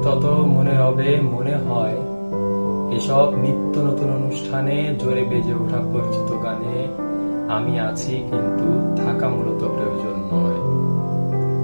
তত মনে হবে, মনে হয় এসব নিত্য নতুন অনুষ্ঠানে জোরে বেজে ওঠা পরিচিত গানে আমি আছি, কিন্তু থাকা মূলত প্রয়োজন নয়।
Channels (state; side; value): inverted; both; correlation -1.00